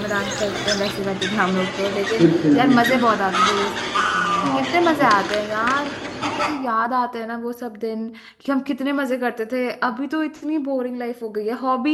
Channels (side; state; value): both; identical; correlation 1.00